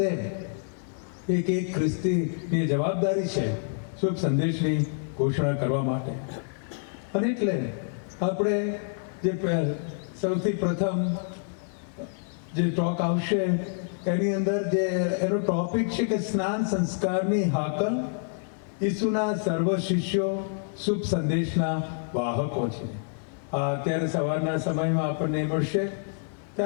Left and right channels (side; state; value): right; silent; digital silence